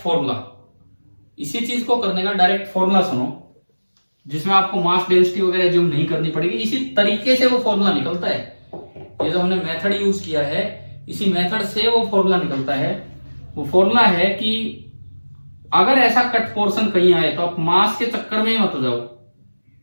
फॉर्मूला सुनो, जिसमें आपको मास डेंसिटी वगैरह एज्यूम नहीं करनी पड़ेगी। इसी तरीके से वो फॉर्मूला निकलता है। ये जो हमने मेथड यूज किया है, इसी मेथड से वो फॉर्मूला निकलता है। वो फॉर्मूला है कि अगर ऐसा कट पोर्शन कहीं आए तो आप मास के चक्कर में ही मत जाओ।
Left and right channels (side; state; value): both; inverted; correlation -1.00